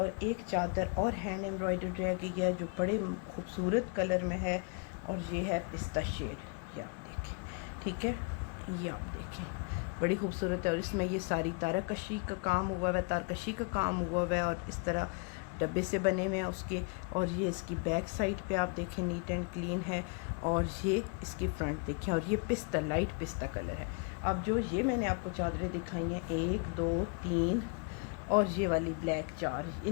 एक चादर और हैंड एम्ब्रॉयडर्ड रह गई है जो बड़े खूबसूरत कलर में है, और ये है पिस्ता शेड, ये आप देखें, ठीक है। ये आप देखें, बड़ी खूबसूरत है। और इसमें ये सारी तारकशी का काम हुआ हुआ है, तारकशी का काम हुआ हुआ है, और इस तरह डब्बे से बने हुए हैं उसके। और ये इसकी बैक साइड पे आप देखें नीट एंड क्लीन है, और ये इसकी फ्रंट देखें। और ये पिस्ता, लाइट पिस्ता कलर है। अब जो ये मैंने आपको चादरें दिखाई हैं 1 2 3 और ये वाली ब्लैक 4,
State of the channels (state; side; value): quieter; right; 34.8 dB